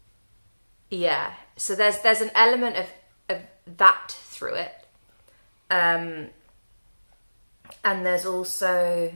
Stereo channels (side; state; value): both; inverted; correlation -1.00